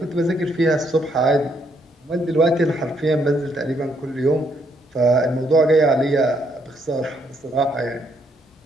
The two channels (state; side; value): normal; both; correlation 0.72